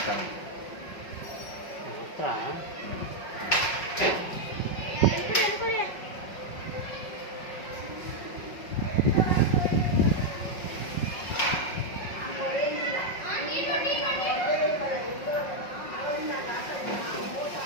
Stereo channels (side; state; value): right; late; 5.4 ms